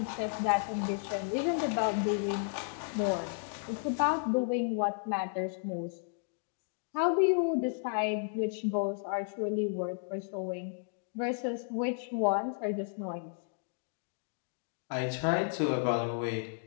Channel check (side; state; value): right; silent; 56 dB below the other